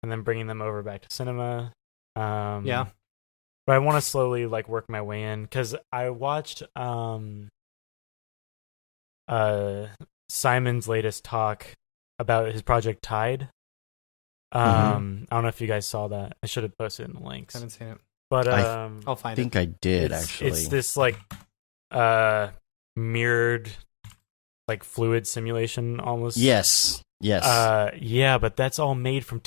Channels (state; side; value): silent; right; digital silence